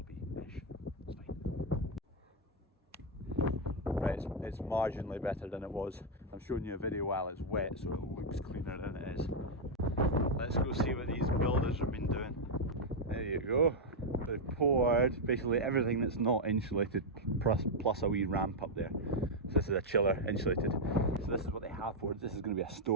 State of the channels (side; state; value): both; normal; correlation -0.02